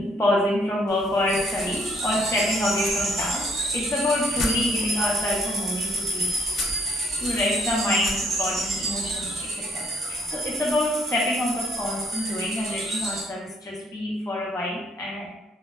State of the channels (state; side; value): normal; both; correlation 0.67